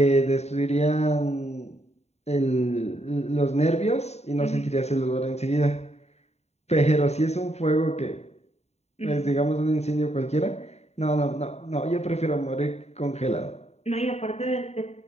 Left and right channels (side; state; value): right; late; 0.32 ms